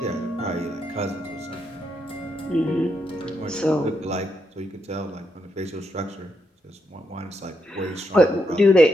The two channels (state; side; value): normal; both; correlation 0.81